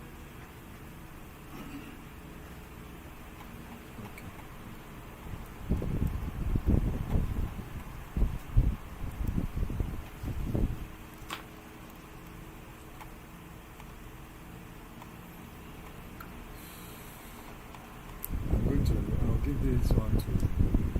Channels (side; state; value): both; identical; correlation 1.00